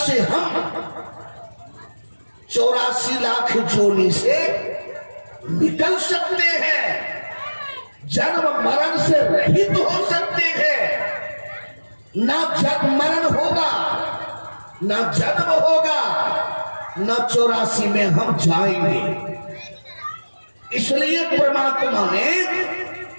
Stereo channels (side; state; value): both; inverted; correlation -1.00